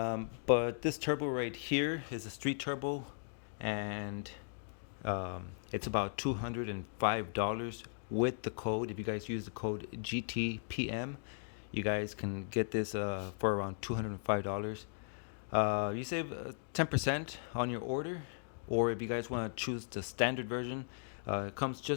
this turbo right here is a street turbo, and it's about $205 with the code. If you guys use the code GTPM, you guys can get this for around $205. You save 10% on your order, or if you guys want to choose the standard version, it comes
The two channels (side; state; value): right; silent; digital silence